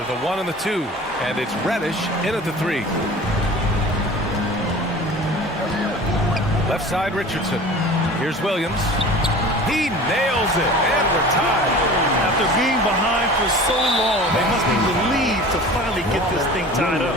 the 1 and the 2. And it's Reddish in at the 3. Left side Richardson. Here's Williams. He nails it, and we're tied. After being behind for so long, they must be relieved to finally get this thing tied up.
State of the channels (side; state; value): both; normal; correlation 0.40